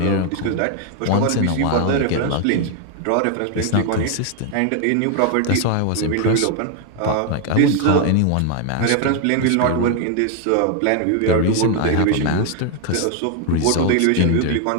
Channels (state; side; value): different; both; correlation 0.00